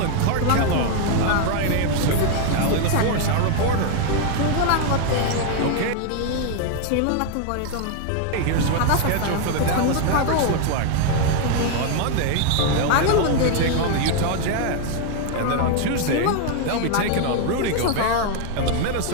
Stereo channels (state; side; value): different; both; correlation 0.01